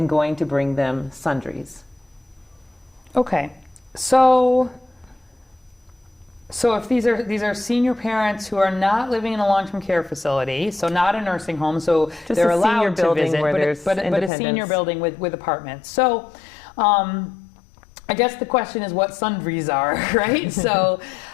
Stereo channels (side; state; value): right; drops out; at 14.3 s